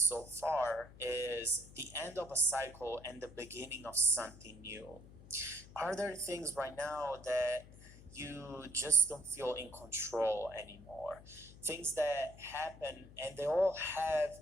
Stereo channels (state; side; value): noise; left; hum, 19 dB below the sound